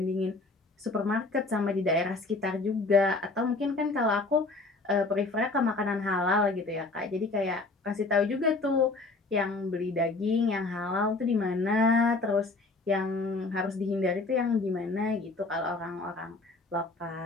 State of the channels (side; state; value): right; quieter; 3.5 dB